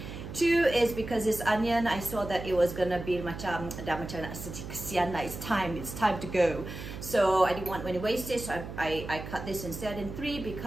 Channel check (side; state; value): right; noise; hum, 10 dB below the sound